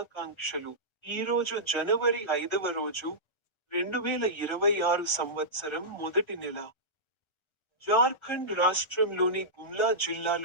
ఈరోజు జనవరి 5వ రోజు, 2026 సంవత్సరం మొదటి నెల. జార్ఖండ్ రాష్ట్రంలోని గుమ్లా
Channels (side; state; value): right; late; 1.3 ms